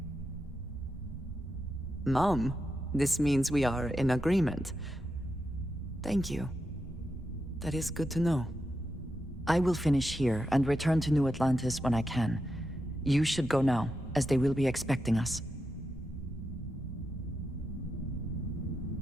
Mom, this means we are in agreement. Thank you. That is good to know. I will finish here and return to New Atlantis when I can. You should go now, as they will be expecting us.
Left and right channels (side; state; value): both; normal; correlation 0.87